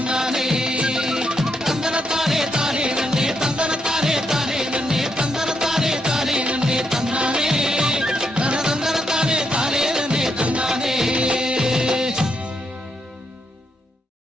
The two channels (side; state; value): both; normal; correlation 0.79